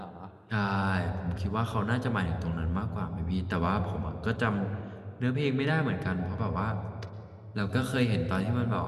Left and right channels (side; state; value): both; identical; correlation 1.00